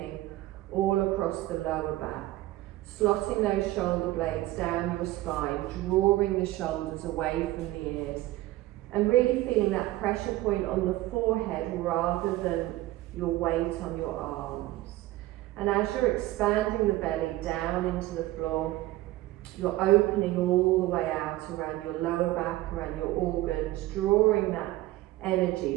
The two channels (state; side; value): quieter; left; 16.9 dB